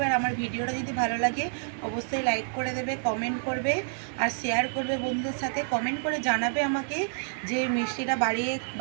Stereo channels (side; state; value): left; silent; digital silence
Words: আর আমার ভিডিওটা যদি ভালো লাগে অবশ্যই লাইক করে দেবে, কমেন্ট করবে আর শেয়ার করবে বন্ধুদের সাথে। কমেন্ট করে জানাবে আমাকে যে মিষ্টিটা